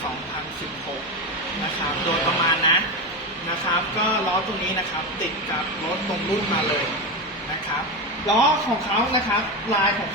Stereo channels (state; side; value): normal; both; correlation 0.16